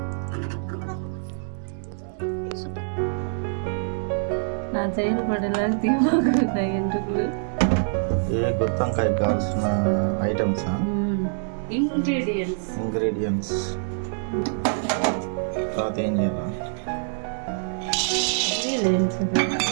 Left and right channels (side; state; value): left; silent; digital silence